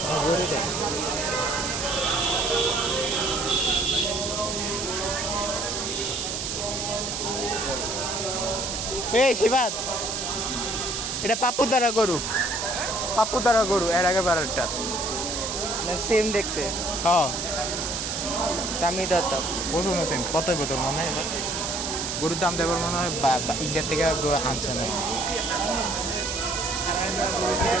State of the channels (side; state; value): right; noise; hiss, 3 dB below the sound